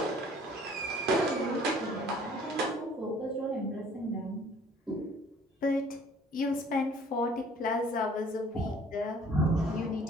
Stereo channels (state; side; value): normal; both; correlation 0.54